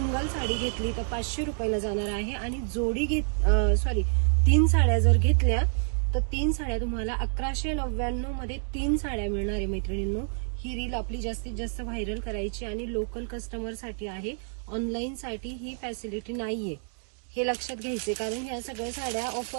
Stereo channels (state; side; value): silent; left; digital silence